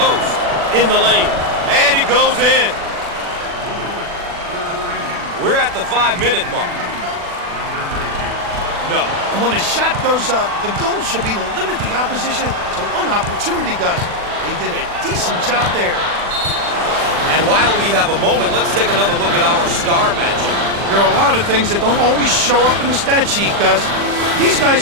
in the lane, and it goes in. We're at the 5-minute mark. No. And when a shot goes up, the goal should be to limit the opposition to one opportunity, Gus. They did a decent job there. And while we have a moment, let's take another look at our star matchup. There are a lot of things that don't always show up in the stat sheet, Gus. These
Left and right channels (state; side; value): late; left; 40 ms